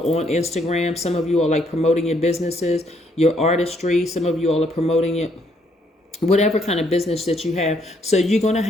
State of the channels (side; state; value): both; normal; correlation 0.70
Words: on Instagram. Some of you are promoting your businesses, your artistry. Some of you all are promoting it, whatever kind of business that you have. So you're going to